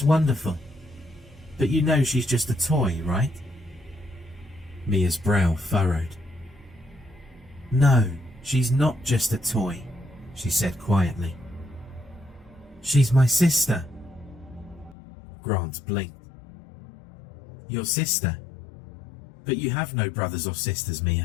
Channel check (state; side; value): drops out; right; at 15.0 s